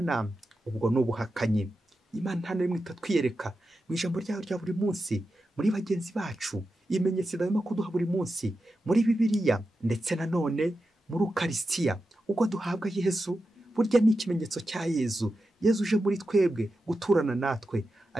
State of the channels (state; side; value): normal; both; correlation 0.90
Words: ubwo ni ubuhakanyi. Imana nta na rimwe itatwiyereka mu ijambo ryayo rya buri munsi, muri bagenzi bacu, ibimenyetso idahwema kuduha buri munsi, muri Bibiliya, ndetse nanone muri Ukarisitiya. Ubwo duhabwa Yesu, burya ni ikimenyetso cya Yesu. Yesu uje muri twebwe guturana natwe.